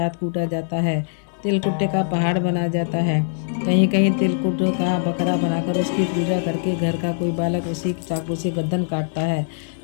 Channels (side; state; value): right; silent; digital silence